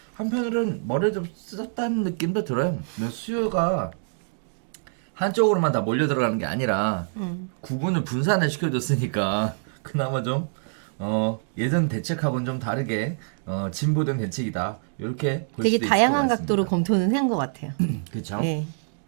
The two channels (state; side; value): silent; left; digital silence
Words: 한편으로는 머리를 좀 쓰었다는 느낌도 들어요. 수요가 한쪽으로만 다 몰려 들어가는 게 아니라 구분을 분산을 시켜줬으니까 그나마 좀 예전 대책하고는 좀 다르게 진보된 대책이다. 이렇게 볼 되게 수도 있을 것 다양한 같습니다. 각도로 검토는 한 것 같아요. 그렇죠. 네.